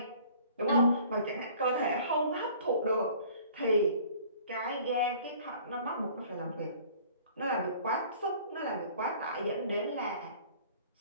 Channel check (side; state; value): both; inverted; correlation -0.51